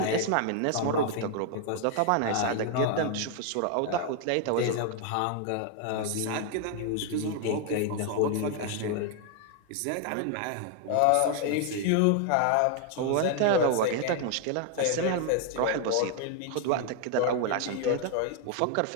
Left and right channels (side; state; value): both; different; correlation 0.00